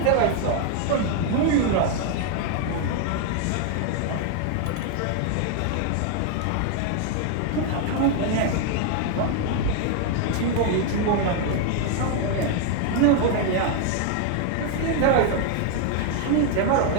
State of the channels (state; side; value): different; both; correlation 0.01